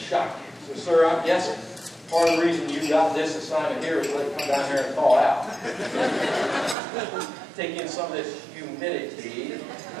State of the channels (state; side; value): drops out; left; at 6.8 s